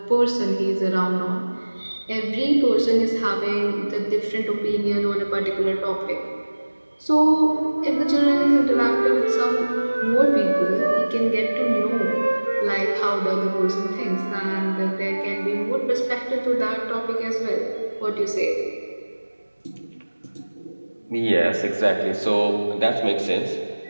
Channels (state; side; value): inverted; both; correlation -1.00